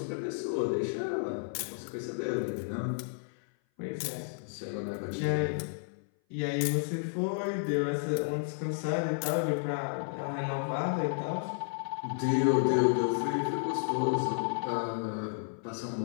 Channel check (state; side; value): silent; right; 56 dB below the other